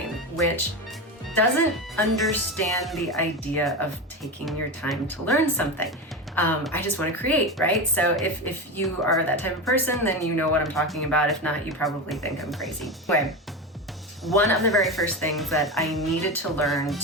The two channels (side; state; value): both; normal; correlation 0.20